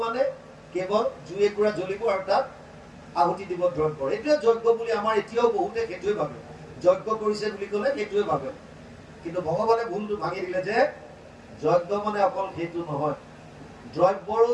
মানে কেৱল জুই একুৰা জ্বলিব আৰু তাত আহুতি দিব দ্ৰব্যৰ। এইটোৱে যজ্ঞ বুলি আমাৰ এতিয়াও বহুতে সেইটোৱে ভাবে, যজ্ঞ কৰিছে বুলি ক'লে সেইটোৱে ভাবে। কিন্তু ভগৱানে ভুলটো ভাঙি দিলে যে যজ্ঞ মানে অকল সেইটো নহয়, দ্ৰব্যৰো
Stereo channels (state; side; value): identical; both; correlation 1.00